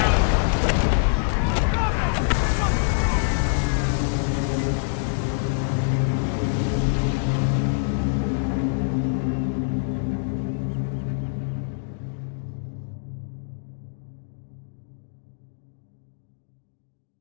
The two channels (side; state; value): right; silent; digital silence